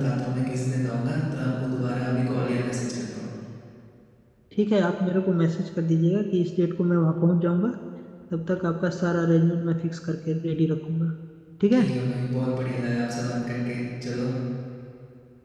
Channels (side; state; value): both; identical; correlation 1.00